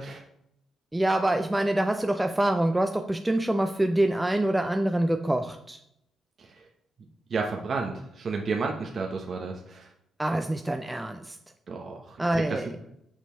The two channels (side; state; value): both; normal; correlation 0.95